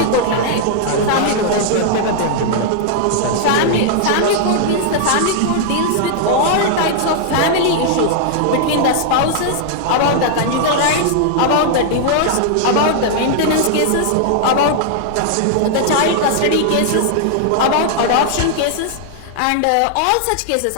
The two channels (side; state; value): both; different; correlation -0.01